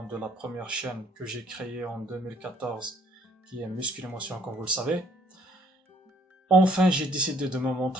de la première chaîne que j'ai créée en 2014, qui est Muscle Émotion, comme vous le savez. Enfin, j'ai décidé de me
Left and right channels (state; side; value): normal; both; correlation 0.64